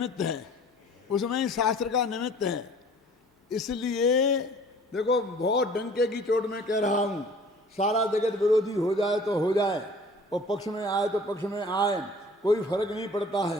है, उसमें ही शास्त्र का निमित्त है। इसलिए देखो, बहुत डंके की चोट में कह रहा हूं, सारा जगत विरोधी हो जाए तो हो जाए, और पक्ष में आए तो पक्ष में आए, कोई फर्क नहीं पड़ता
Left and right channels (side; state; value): both; normal; correlation 0.49